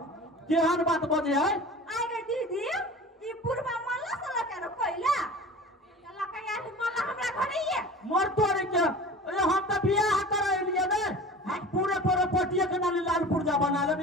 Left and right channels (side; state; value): both; normal; correlation 0.38